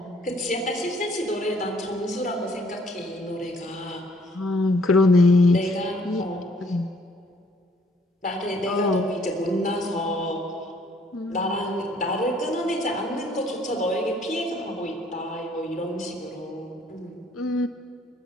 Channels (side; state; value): both; normal; correlation 0.63